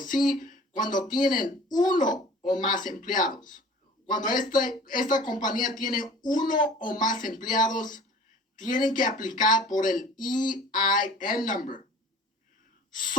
cuando tienen uno o más empleados, cuando esta compañía tiene uno o más empleados, tienen que aplicar por el EIN number.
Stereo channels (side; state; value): both; normal; correlation 0.46